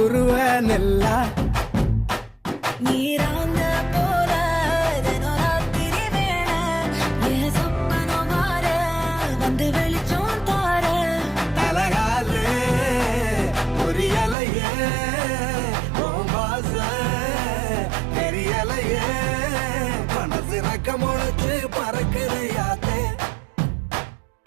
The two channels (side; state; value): left; drops out; at 14.4 s